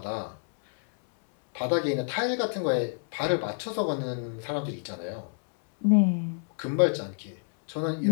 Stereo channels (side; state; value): right; silent; 59 dB below the other